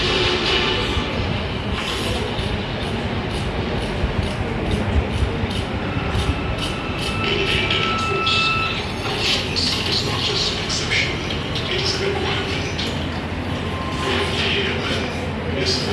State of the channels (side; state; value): both; identical; correlation 1.00